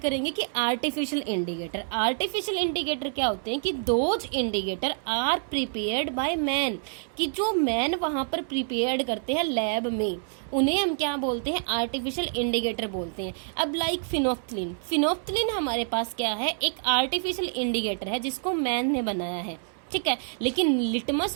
कि आर्टिफिशियल इंडिकेटर। आर्टिफिशियल इंडिकेटर क्या होते हैं कि those indicator are prepared by man, कि जो मैन वहां पर प्रिपेयर्ड करते हैं लैब में, उन्हें हम क्या बोलते हैं, आर्टिफिशियल इंडिकेटर बोलते हैं। अब लाइक फिनोफ्थलीन, फिनोफ्थलीन हमारे पास क्या है, एक आर्टिफिशियल इंडिकेटर है जिसको मैन ने बनाया है, ठीक है। लेकिन लिटमस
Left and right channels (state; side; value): silent; left; 60 dB below the other